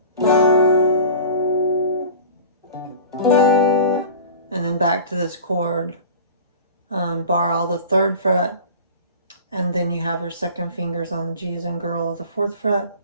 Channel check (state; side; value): inverted; both; correlation -0.40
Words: and then back to this chord, bar all the 3rd fret, and then you have your second fingers on the G as in girl of the 4th fret,